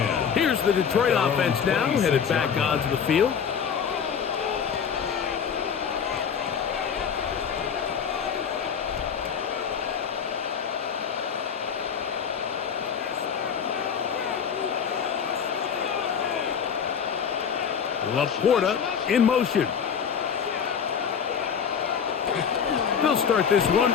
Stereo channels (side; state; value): right; quieter; 7.2 dB